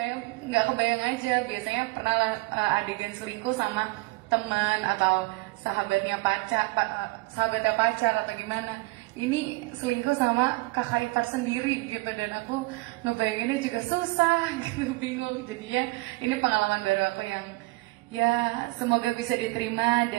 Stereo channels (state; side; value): quieter; left; 23.4 dB